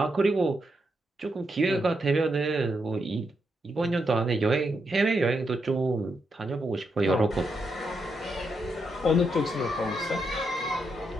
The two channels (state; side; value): normal; both; correlation 0.82